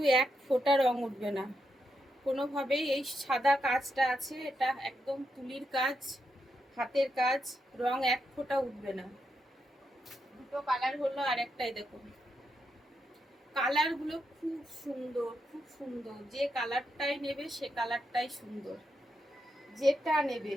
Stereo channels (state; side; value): normal; both; correlation 0.83